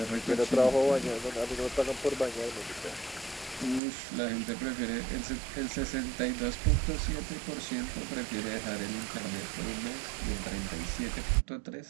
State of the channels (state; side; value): drops out; left; at 3.8 s